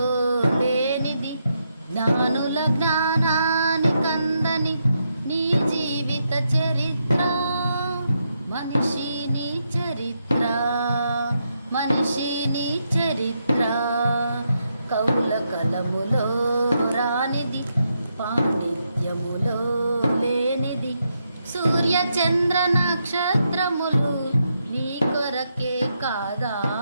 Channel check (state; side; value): inverted; both; correlation -0.81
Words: లేనిది, జ్ఞానుల జ్ఞానానికందని నీ జీవిత చరిత్ర. మనిషి నీ చరిత్ర, మనిషి నీ చరిత్ర. కవుల కలములో రానిది, పాండిత్యములో లేనిది, సూర్య చంద్ర నక్షత్రములు నీ కొరకే కాదా?